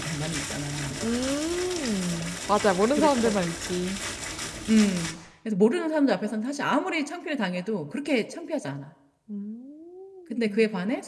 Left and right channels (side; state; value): both; identical; correlation 1.00